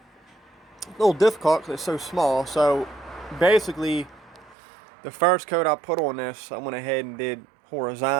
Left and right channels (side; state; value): left; drops out; at 4.5 s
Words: little difficult because it's so small. So basically, the first coat I put on this, I went ahead and did